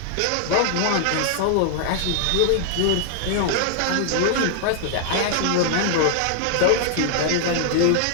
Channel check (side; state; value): both; different; correlation 0.00